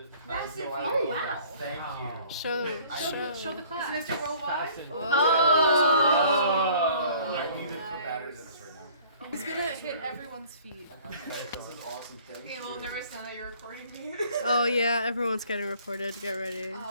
Oh, wow. Thank you. Show the class. Mr. Worldwide? Oh. I need to put batteries in this right now. He's gonna hit everyone's feet. This is awesome. Thank Okay, you. well, never said that you're recording me. Oh yeah, everyone's getting recorded. Get ready.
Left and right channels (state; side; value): inverted; both; correlation -0.54